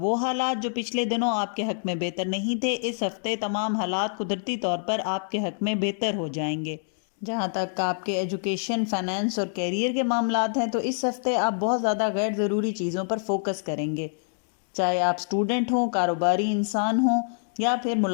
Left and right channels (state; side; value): silent; right; digital silence